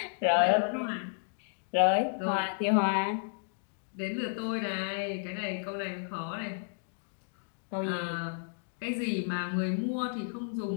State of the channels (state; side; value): silent; right; digital silence